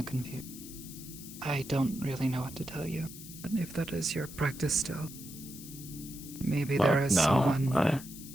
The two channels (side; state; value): left; noise; hiss, 14 dB below the sound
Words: confusion. I don't really know what to tell you. But if that is your practice still, maybe there is someone